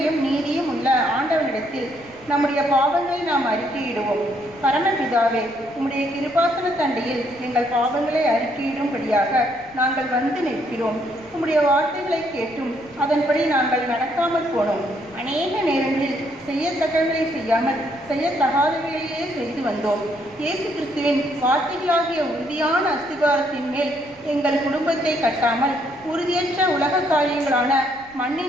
நீதியும் உள்ள ஆண்டவனிடத்தில் நம்முடைய பாவங்களை நாம் அறிக்கையிடுவோம். பரமபிதாவே, உம்முடைய கிருபாசன தண்டையில் எங்கள் பாவங்களை அறிக்கையிடும்படியாக நாங்கள் வந்து நிற்கிறோம். உம்முடைய வார்த்தைகளை கேட்டும் அதன்படி நாங்கள் நடக்காமல் போனோம். அநேக நேரங்களில் செய்யத்தக்கவர்களை செய்யாமல் செய்யத்தகாதவைகளையே செய்து வந்தோம். இயேசு கிறிஸ்துவின் வார்த்தைகளாகிய உறுதியான அஸ்திபாரத்தின் மேல் எங்கள் குடும்பத்தை கட்டாமல் உறுதியற்ற உலக காரியங்களான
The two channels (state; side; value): noise; left; rumble, 27 dB below the sound